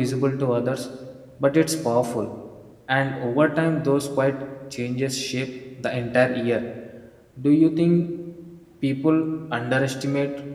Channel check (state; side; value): identical; both; correlation 1.00